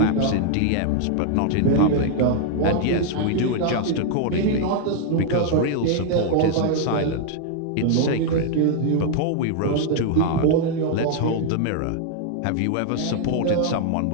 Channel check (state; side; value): different; both; correlation 0.00